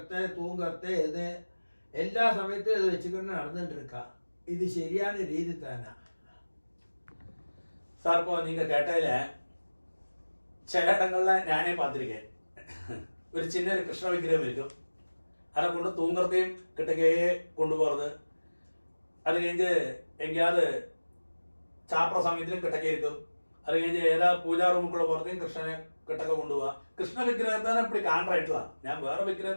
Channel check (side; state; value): both; inverted; correlation -1.00